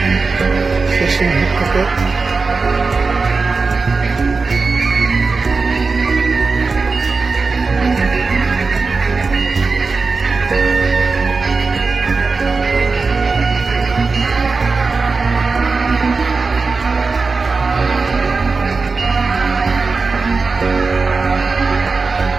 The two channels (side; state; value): left; quieter; 4.3 dB